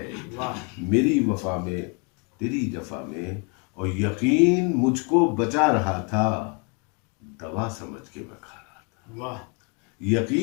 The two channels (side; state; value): right; quieter; 34.4 dB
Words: واہ میری وفا میں تیری جفا میں، اور یقین مجھ کو بچا رہا تھا دوا سمجھ کے میں کھا رہا تھا۔ واہ،